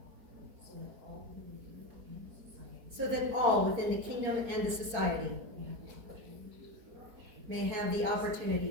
so that all within the kingdom and the society may have the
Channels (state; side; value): late; left; 4.2 ms